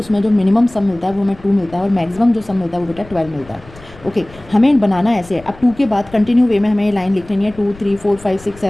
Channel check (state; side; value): noise; left; rumble, 21 dB below the sound